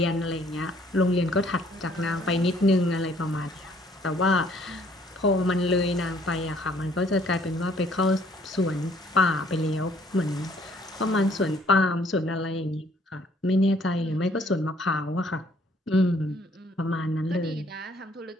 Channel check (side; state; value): both; normal; correlation 0.62